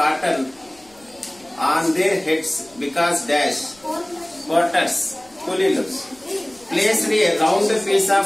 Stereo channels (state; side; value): noise; left; rumble, 30 dB below the sound